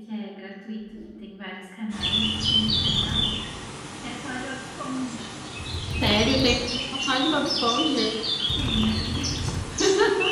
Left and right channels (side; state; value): both; identical; correlation 1.00